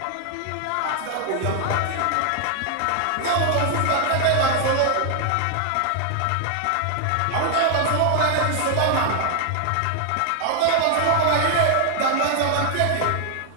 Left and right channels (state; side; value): different; both; correlation 0.00